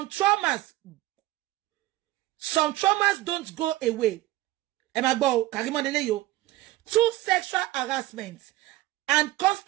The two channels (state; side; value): quieter; left; 17.1 dB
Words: don't go away. Ẹ máa gbọ́ Karimo lele yo. 2 sexual harassments and